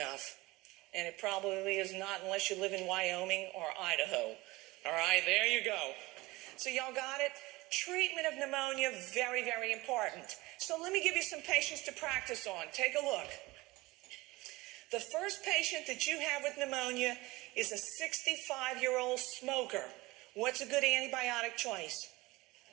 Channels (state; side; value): quieter; left; 21.2 dB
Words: And it probably is not unless you live in Wyoming or Idaho. All right, there you go. So y'all got it? Treatment of pneumonia, very, very important. So let me give you some patients to practice on. Take a look. The first patient that you have with pneumonia is a 65-year-old smoker. What's a good antibiotic choice?